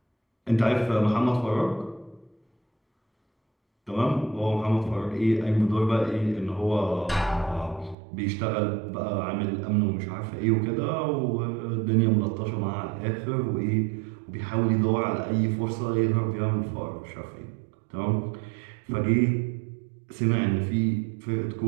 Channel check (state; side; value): drops out; left; at 8.0 s